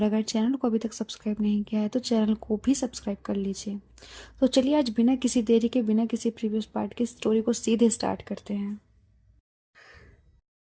अगर चैनल को अभी तक सब्सक्राइब नहीं किया है तो चैनल को भी सब्सक्राइब कर लीजिए। तो चलिए आज बिना किसी देरी के, बिना किसी प्रीवियस पार्ट की स्टोरी को सीधे स्टार्ट करते हैं।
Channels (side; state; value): both; identical; correlation 1.00